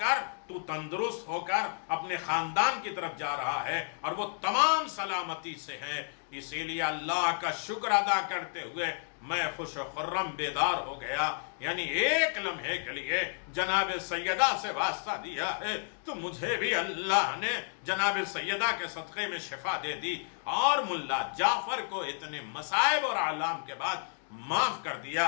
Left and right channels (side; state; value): right; silent; digital silence